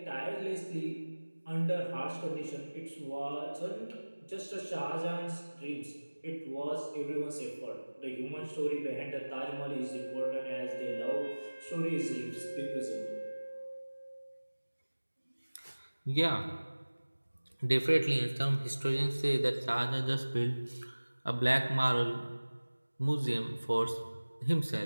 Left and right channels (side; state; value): both; inverted; correlation -1.00